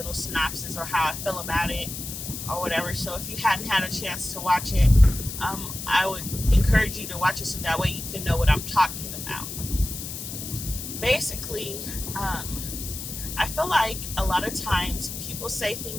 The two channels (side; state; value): left; noise; hiss, 8 dB below the sound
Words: synopsis or how I feel about it or whatever. So if you hadn't had a chance to watch it, I would encourage you to watch it so that way you can know what I'm talking about. Basically, I feel like a lot of times people say